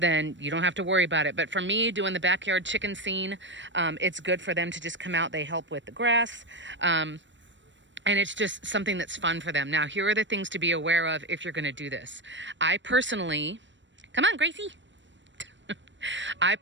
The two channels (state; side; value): late; left; 0.54 ms